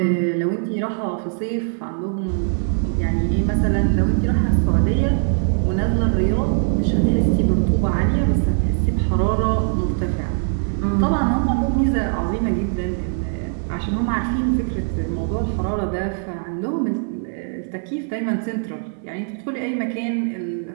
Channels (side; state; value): left; silent; 62 dB below the other